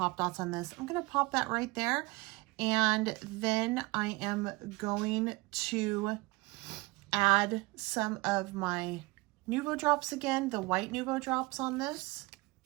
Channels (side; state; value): left; quieter; 23.9 dB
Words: dots on this. I'm gonna pop that right there, and then I am going to add some of my Nuvo drops again, the white Nuvo drops on this.